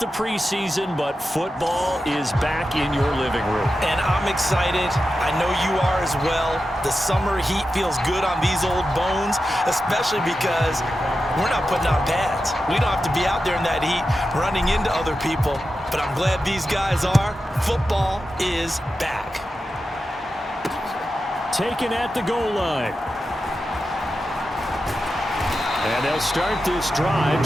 the preseason, but football is back in your living room. And I'm excited. I know you are as well. The summer heat feels good on these old bones, especially because we're not putting on pads. We don't have to be out there in that heat running into other people. But I'm glad these guys are. Football is back. Taken at the goal line. And they'll start this drive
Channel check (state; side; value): normal; both; correlation 0.91